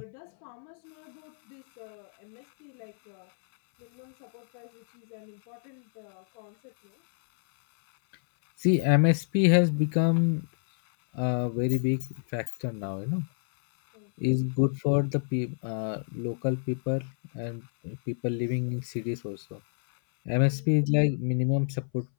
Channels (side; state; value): right; silent; 59 dB below the other